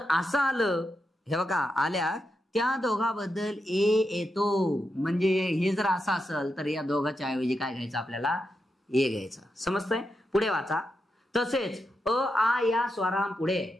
असं आलं, हे बघा आल्या, त्या दोघांबद्दल ए येतो. म्हणजे हे जर असं असेल तर या दोघांच्या ऐवजी काय घ्यायचं आपल्याला? ए घ्यायचा. समजतंय? पुढे वाचा. तसेच अ आ या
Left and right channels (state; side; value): normal; both; correlation 0.86